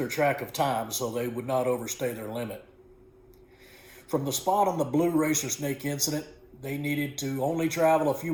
track of time so they would not overstay their limit. From the spot on the blue racer snake incident, they needed to only travel a few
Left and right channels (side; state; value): both; identical; correlation 1.00